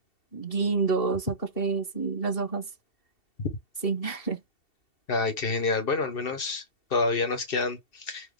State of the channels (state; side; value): late; right; 2.7 ms